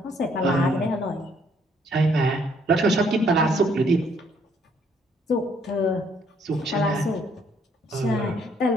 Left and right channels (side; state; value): both; normal; correlation 0.66